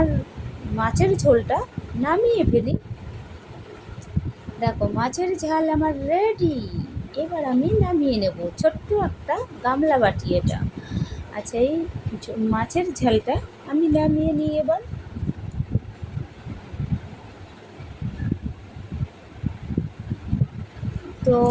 মাছের ঝোলটা নামিয়ে ফেলি। দেখো মাছের ঝাল আমার রেডি। এবার আমি নামিয়ে নেব, ছোট্ট একটা গামলা বাটি এটা। আচ্ছা, এই মাছের ঝালটা আমি নামিয়ে নিই এবার। তো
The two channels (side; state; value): both; identical; correlation 1.00